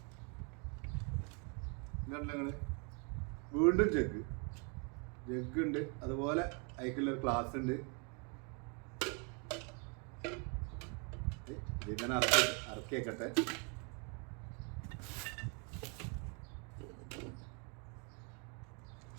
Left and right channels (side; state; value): left; quieter; 35.5 dB